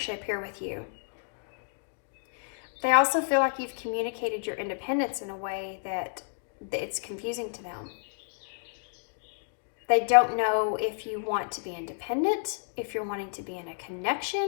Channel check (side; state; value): right; silent; digital silence